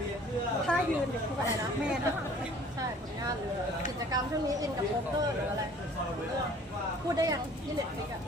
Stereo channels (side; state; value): both; normal; correlation 0.52